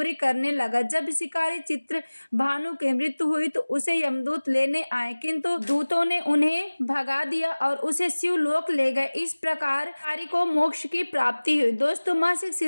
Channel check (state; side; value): inverted; both; correlation -1.00